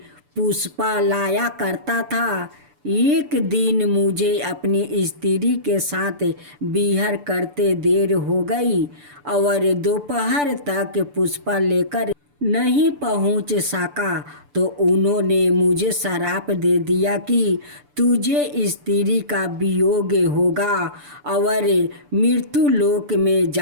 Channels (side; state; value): left; late; 6.9 ms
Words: पुष्पा लाया करता था। एक दिन मुझे अपनी स्त्री के साथ विहार करते देर हो गई और दोपहर तक पुष्पा लेकर नहीं पहुंच सका तो उन्होंने मुझे श्राप दे दिया कि तुझे स्त्री का वियोग होगा और मृत्यु लोक में